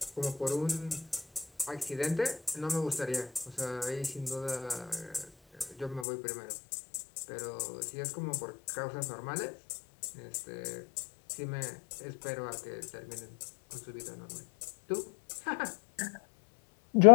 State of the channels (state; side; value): drops out; right; at 6.1 s